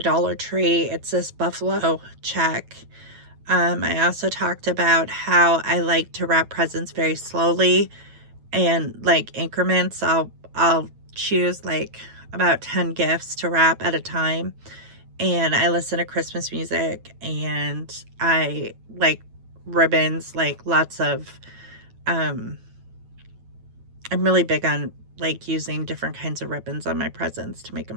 Tree. It's this buffalo check. I also talked about how I like to wrap presents very slowly and like increments. I'll choose like about 10 gifts to wrap at a time, and I listen to Christmas music, and I like ribbons, like lots of I'm really big on like using different kinds of ribbons on my presents to make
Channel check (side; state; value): left; late; 9.1 ms